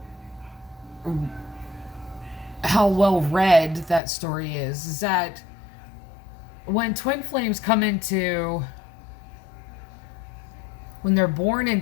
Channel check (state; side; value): drops out; right; at 4.0 s